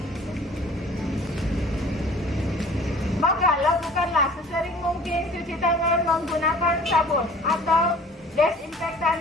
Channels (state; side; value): normal; both; correlation 0.49